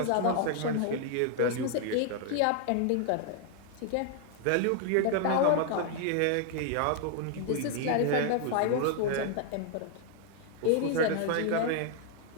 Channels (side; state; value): both; different; correlation 0.00